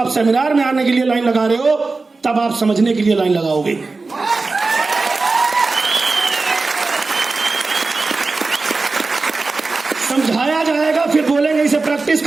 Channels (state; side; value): quieter; left; 3.8 dB